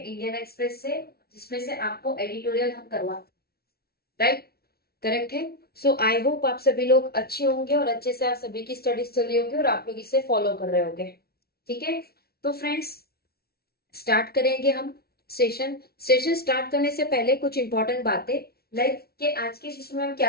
एक्सप्रेस से, जिसमें से आपको एडिटोरियल हम करवा, राइट, करेक्ट है। सो आई होप आप सभी लोग अच्छे होंगे और अच्छे से आप सभी की स्टडीज चल रही होगी और आप लोग इसे फॉलो कर रहे होंगे। ठीक है, तो फ्रेंड्स स्टार्ट करेंगे हम सेशन। सेशन स्टार्ट करने से पहले कुछ इंपॉर्टेंट बातें, लाइक कि आज के सेशन में हम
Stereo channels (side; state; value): right; late; 0.45 ms